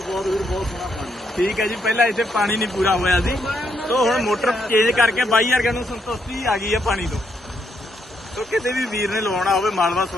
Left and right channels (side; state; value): both; normal; correlation 0.77